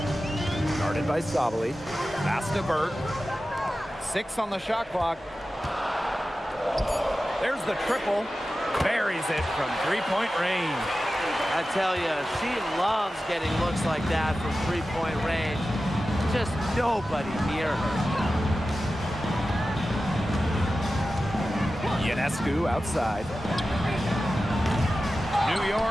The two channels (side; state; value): both; normal; correlation 0.94